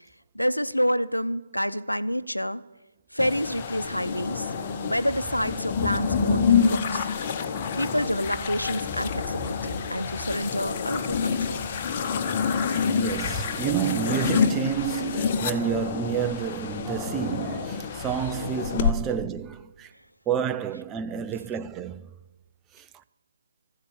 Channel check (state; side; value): inverted; both; correlation -0.57